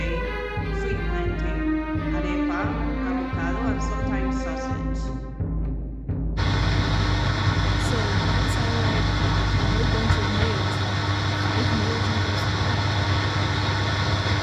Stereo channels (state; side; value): identical; both; correlation 1.00